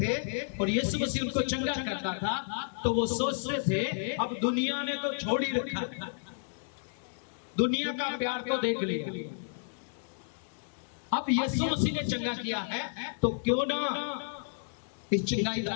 और यीशु मसीह उनको चंगा करता था। तो वो सोचते थे अब दुनिया ने तो छोड़ ही रखा, दुनिया का प्यार तो देख लिया, अब यीशु मसीह ने चंगा किया है तो क्यों ना इस चंगाई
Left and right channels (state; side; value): silent; right; digital silence